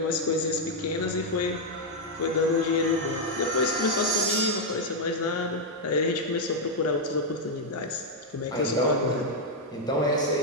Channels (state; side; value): normal; both; correlation -0.01